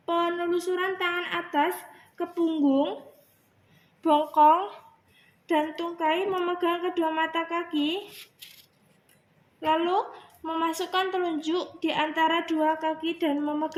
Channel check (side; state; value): both; identical; correlation 1.00